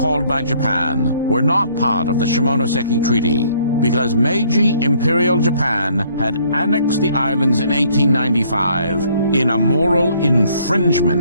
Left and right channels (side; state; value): both; inverted; correlation -0.62